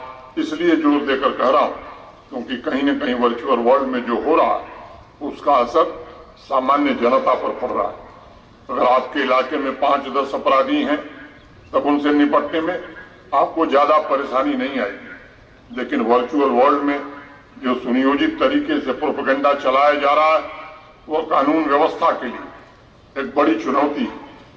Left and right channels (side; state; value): both; identical; correlation 1.00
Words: इसलिए जोर देकर कह रहा हूं क्योंकि कहीं न कहीं वर्चुअल वर्ल्ड में जो हो रहा है उसका असर सामान्य जनता पर पड़ रहा है। अगर आपके इलाके में 5-10 अपराधी हैं तब उनसे निपटने में आपको ज्यादा परेशानी नहीं आएगी, लेकिन वर्चुअल वर्ल्ड में जो सुनियोजित तरीके से प्रोपेगेंडा चलाया जा रहा है वो कानून व्यवस्था के लिए एक बड़ी चुनौती,